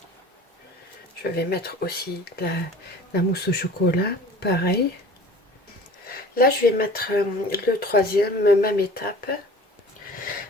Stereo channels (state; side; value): normal; both; correlation 0.44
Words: Je vais mettre aussi la mousse au chocolat, pareil. Là, je vais mettre le troisième, même étape.